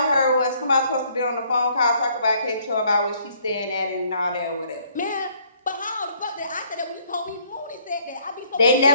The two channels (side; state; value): both; inverted; correlation -0.63